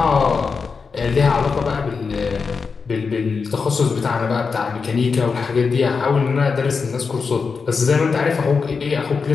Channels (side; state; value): right; quieter; 5.1 dB